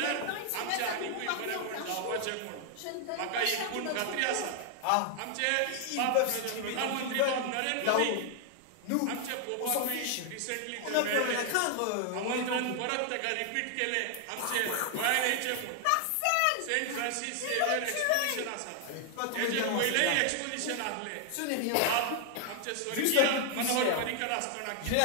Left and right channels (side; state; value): both; different; correlation 0.00